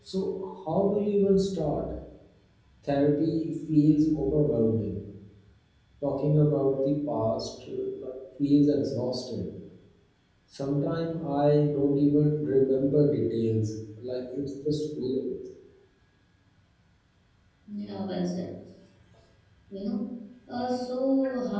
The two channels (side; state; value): both; identical; correlation 1.00